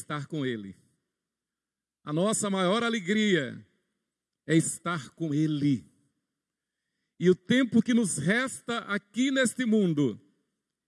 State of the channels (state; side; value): identical; both; correlation 1.00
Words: com Ele. A nossa maior alegria é estar com Ele. E o tempo que nos resta aqui neste mundo